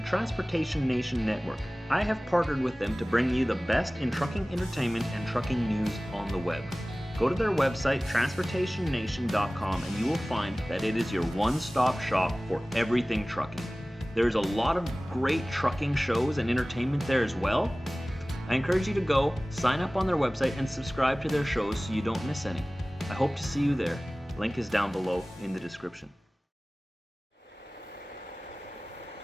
Transportation Nation Network. I have partnered with them to bring you the best in trucking entertainment and trucking news on the web. Go to their website, transportationnation.com, and you will find that it is your one-stop shop for everything trucking. There's a lot of great trucking shows and entertainment there as well. I encourage you to go, sign up on their website, and subscribe to their shows so you don't miss any. I hope to see you there. Link is down below in the description.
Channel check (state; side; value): normal; both; correlation 0.98